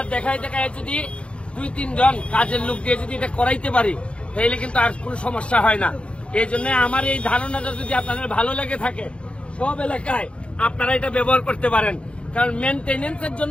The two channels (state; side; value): late; right; 0.059 ms